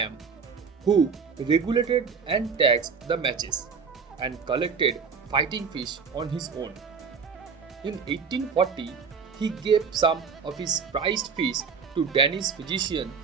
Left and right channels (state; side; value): quieter; left; 5.6 dB